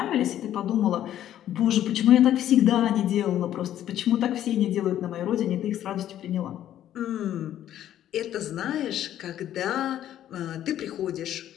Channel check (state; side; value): quieter; right; 11.7 dB